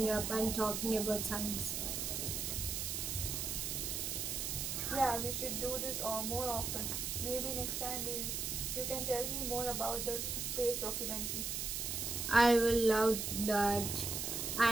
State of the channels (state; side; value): noise; right; hiss, 2 dB below the sound